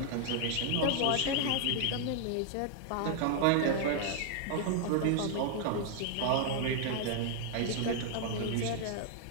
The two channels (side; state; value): both; different; correlation 0.00